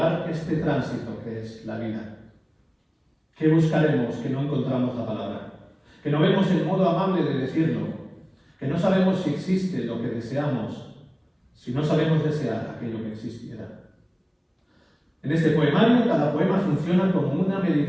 este tránsito que es la vida. ¿Qué buscaremos que no encontramos la palabra? que no vemos el modo amable de decirlo, que no sabemos si existe lo que deseamos, si no sabemos desear aquello que existiera. En este poemario, cada poema funciona como una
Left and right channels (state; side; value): identical; both; correlation 1.00